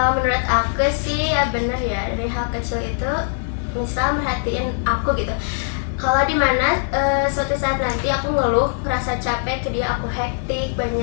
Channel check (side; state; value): right; silent; digital silence